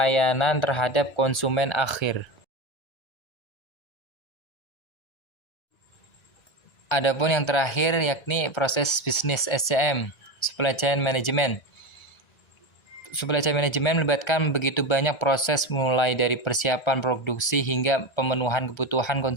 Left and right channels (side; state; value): right; late; 1.3 ms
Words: terhadap konsumen akhir. Adapun yang terakhir yakni proses bisnis SCM, supply chain management. Supply chain management melibatkan begitu banyak proses mulai dari persiapan produksi hingga pemenuhan kebutuhan